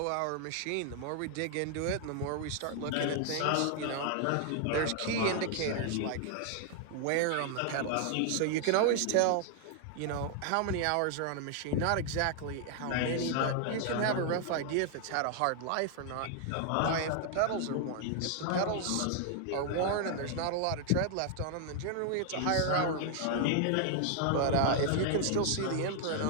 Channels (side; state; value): both; different; correlation 0.00